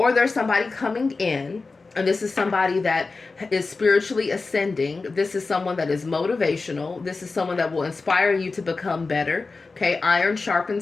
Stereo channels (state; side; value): quieter; right; 3.9 dB